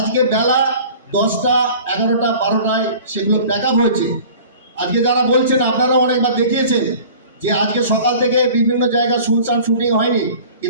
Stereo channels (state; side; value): inverted; both; correlation -0.44